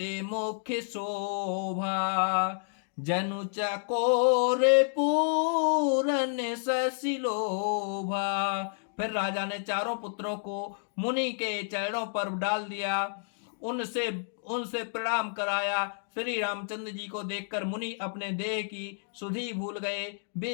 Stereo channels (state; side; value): silent; right; digital silence